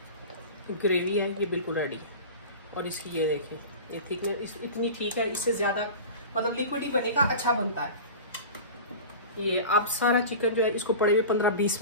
ग्रेवी है ये बिल्कुल रेडी है, और इसकी ये देखें, ये थिकनेस इतनी ठीक है, इससे ज़्यादा मतलब लिक्विड ही बनेगा, अच्छा बनता है ये। अब सारा चिकन जो है इसको पड़े हुए 15-20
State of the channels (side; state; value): both; inverted; correlation -0.33